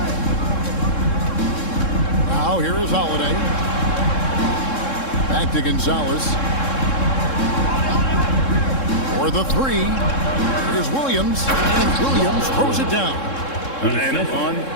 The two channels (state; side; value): late; right; 3.7 ms